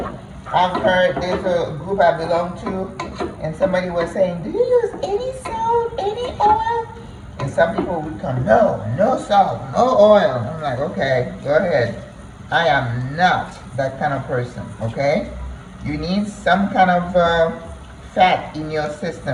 I've heard there's a group I belong to, and somebody was saying, do you use any salt, any oil? And some people would come, no, no salt, no oil. I'm like, okay, go ahead. I am not that kind of person, okay? You need some kind of fat in your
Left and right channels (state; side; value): identical; both; correlation 1.00